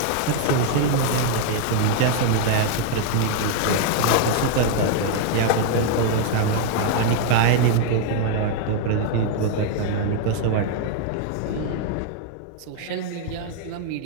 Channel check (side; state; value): both; different; correlation 0.00